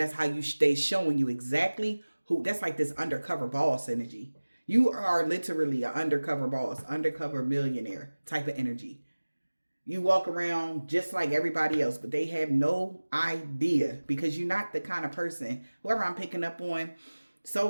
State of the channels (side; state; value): both; inverted; correlation -1.00